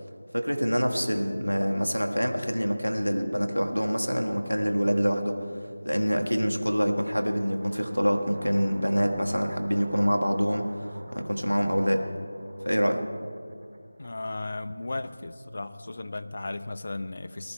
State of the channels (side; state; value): both; inverted; correlation -0.99